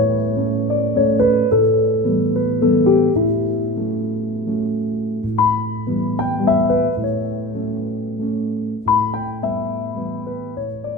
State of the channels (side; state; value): both; normal; correlation 0.37